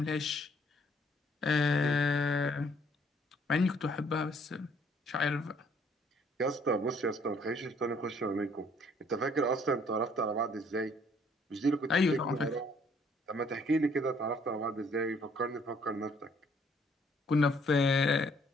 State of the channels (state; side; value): normal; both; correlation 0.64